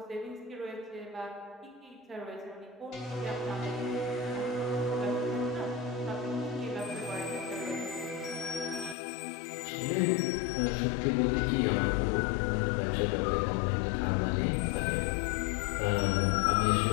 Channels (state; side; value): drops out; right; at 9.0 s